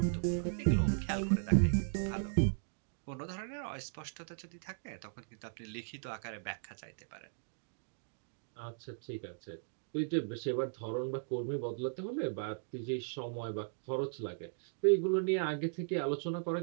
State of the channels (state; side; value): silent; left; digital silence